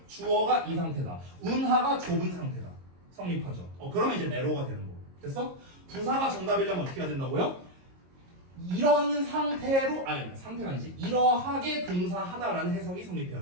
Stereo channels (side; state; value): left; late; 22 ms